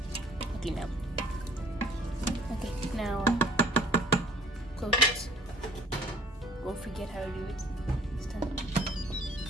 Okay, now. Okay, now close it. Won't forget how to do it this time.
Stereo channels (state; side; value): normal; both; correlation 0.54